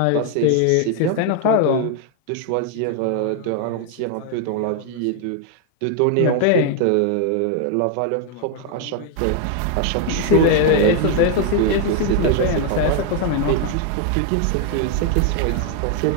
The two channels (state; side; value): different; both; correlation 0.00